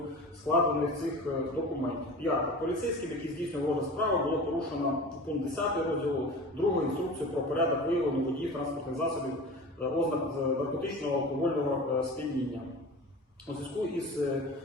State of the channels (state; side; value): normal; both; correlation 0.35